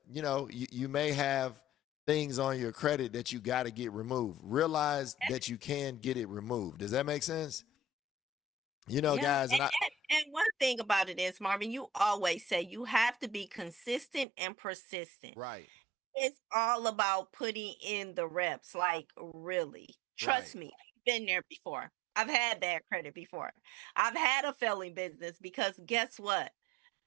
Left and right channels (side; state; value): left; drops out; at 14.2 s